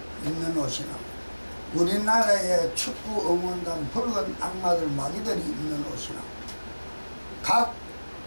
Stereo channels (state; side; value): inverted; both; correlation -1.00